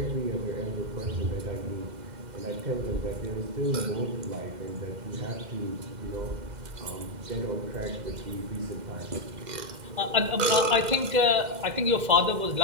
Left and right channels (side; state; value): left; late; 2.1 ms